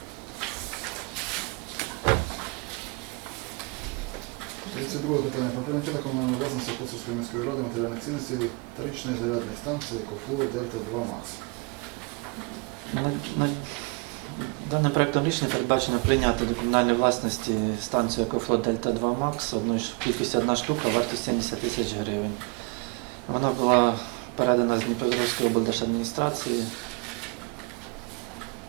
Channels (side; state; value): left; quieter; 29.4 dB